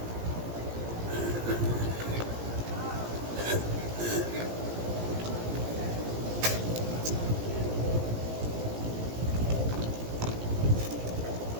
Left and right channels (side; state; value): left; late; 17 ms